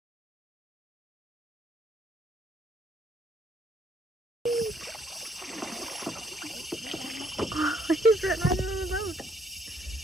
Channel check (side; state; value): both; normal; correlation 0.68